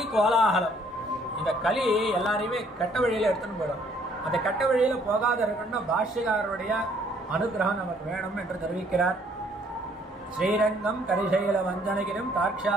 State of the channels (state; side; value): normal; both; correlation 0.63